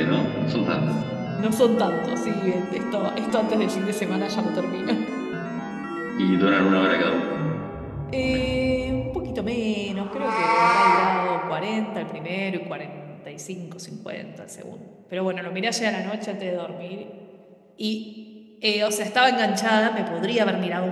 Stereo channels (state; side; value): identical; both; correlation 1.00